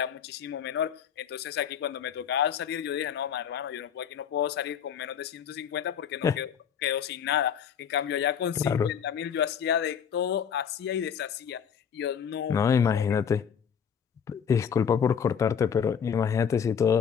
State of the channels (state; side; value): quieter; right; 7.7 dB